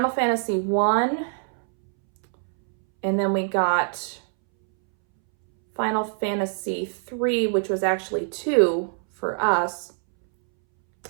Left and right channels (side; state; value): left; silent; 63 dB below the other